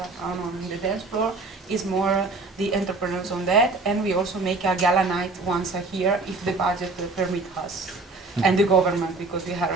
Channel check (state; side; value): quieter; left; 3.5 dB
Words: on the dance floor, is more the entrepreneurs on that, and we also make a gala night once a year if the budget permit us, and the government, because we are